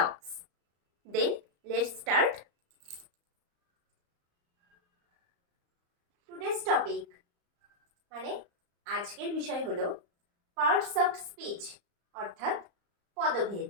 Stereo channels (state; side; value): late; left; 34 ms